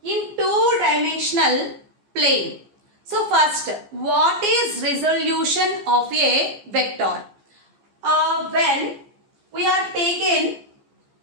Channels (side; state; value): left; late; 14 ms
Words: in two-dimensional plane. So first, what is resolution of a vector? When we are taken